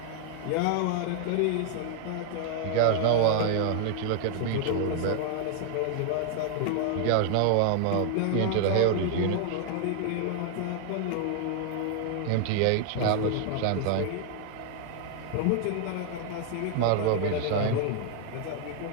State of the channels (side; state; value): both; different; correlation 0.00